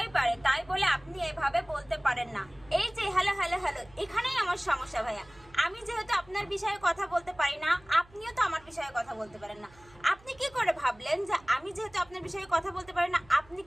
পারে, তাই বলে আপনি এভাবে বলতে পারেন না। এই যে হ্যালো হ্যালো হ্যালো, এখানেই আমার সমস্যা ভাইয়া। আমি যেহেতু আপনার বিষয়ে কথা বলতে পারি না, আপনিও তো আমার বিষয়ে কথা বলতে পারেন না। আপনি কি করে ভাবলেন যে আমি যেহেতু আপনার বিষয়ে কথা বলতে পারি না, আপনি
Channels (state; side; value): noise; right; hum, 26 dB below the sound